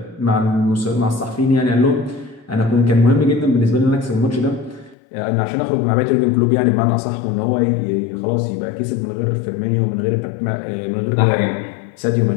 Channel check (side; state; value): right; drops out; at 5.0 s